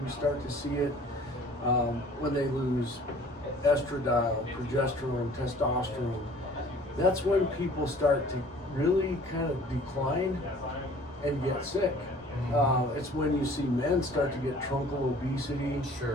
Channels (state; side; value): normal; both; correlation 0.51